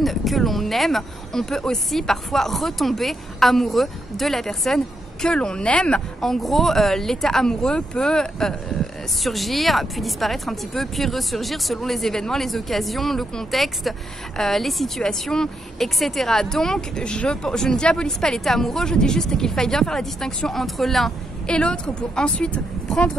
que l'on aime. On peut aussi parfois retomber amoureux de la personne que l'on aime. En gros, l'état amoureux peut surgir, puis disparaître un petit peu, puis ressurgir selon les événements, les occasions, le contexte, les situations, etc. Donc, je ne diabolise pas l'état amoureux, je dis juste qu'il faille bien faire la distinction entre l'un et l'autre pour ensuite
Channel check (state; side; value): normal; both; correlation 0.81